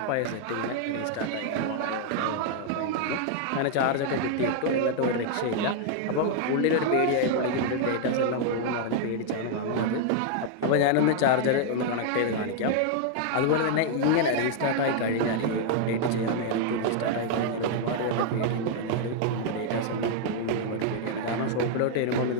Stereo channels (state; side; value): different; both; correlation 0.00